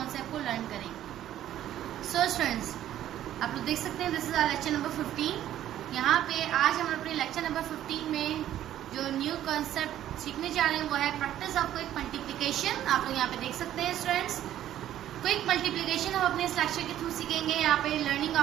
को लर्न करेंगे। सो स्टूडेंट्स, आप लोग देख सकते हैं this is our lecture number 15। यहाँ पे आज हम अपने लेक्चर नंबर 15 में जो न्यू कॉन्सेप्ट सीखने जा रहे हैं वो है प्रैक्टिस ऑफ क्विक मल्टीप्लिकेशन। आप लोग यहाँ पे देख सकते हैं स्टूडेंट्स, क्विक मल्टीप्लिकेशन हम अपने इस लेक्चर के थ्रू सीखेंगे। यहाँ पे लर्निंग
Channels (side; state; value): left; quieter; 12.1 dB